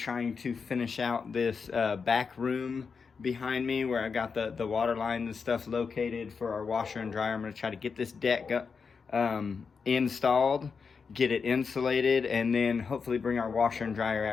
to finish out this back room behind me where I got the water lines and stuff located for our washer and dryer. I'm going to try to get this deck installed, get it insulated, and then hopefully bring our washer and dryer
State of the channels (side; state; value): right; quieter; 5.5 dB